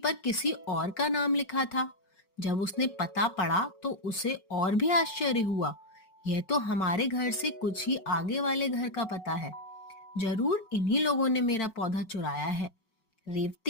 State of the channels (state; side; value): late; right; 5.4 ms